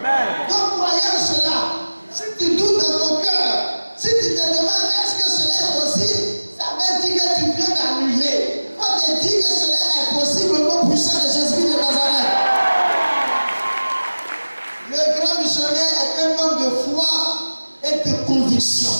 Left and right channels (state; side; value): inverted; both; correlation -1.00